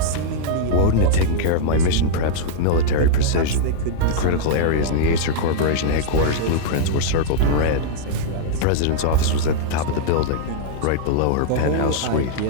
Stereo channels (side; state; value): both; different; correlation -0.01